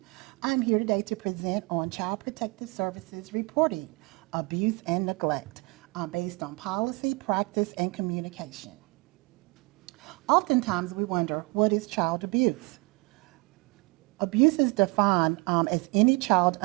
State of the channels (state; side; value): quieter; left; 26.9 dB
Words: I'm here today to present on Child Protective Services reporting, abuse and neglect, based on policy, practice, and communication. Oftentimes we wonder, what is child abuse? Abuse is defined as any child